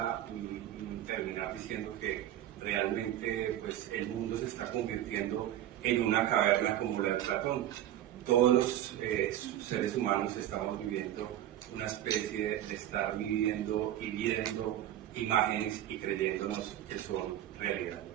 terminar diciendo que realmente pues el mundo se está convirtiendo en una caverna como la de Platón. Todos los seres humanos estamos viviendo una especie de estar viviendo y viendo imágenes y creyéndonos que son realidad.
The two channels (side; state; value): left; quieter; 12.3 dB